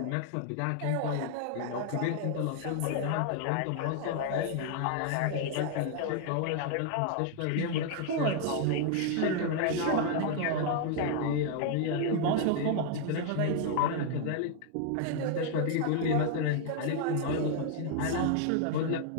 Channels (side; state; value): both; different; correlation 0.00